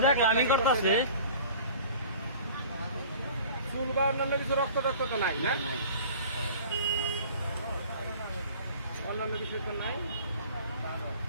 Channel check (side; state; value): both; inverted; correlation -0.45